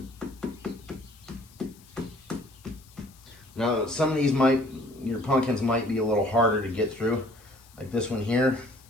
Now some of these your pumpkins might be a little harder to get through, like this one here.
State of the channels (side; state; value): left; noise; hiss, 26 dB below the sound